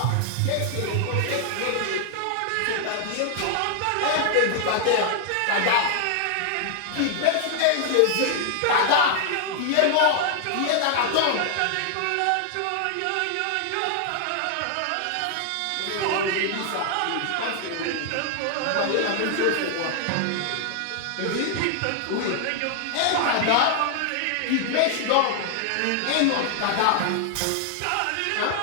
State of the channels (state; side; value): different; both; correlation 0.00